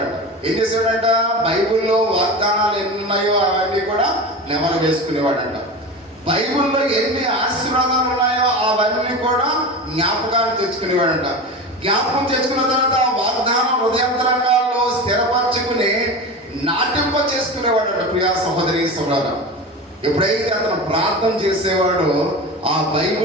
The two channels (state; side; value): normal; both; correlation 0.28